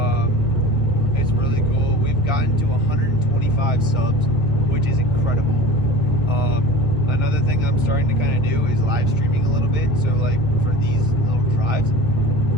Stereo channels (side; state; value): both; normal; correlation 0.36